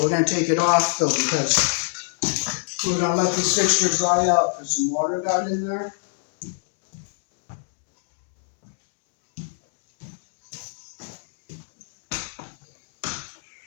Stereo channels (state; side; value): silent; right; digital silence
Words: we're going to take it off though because we're going to let this fixture dry out because some water got in there.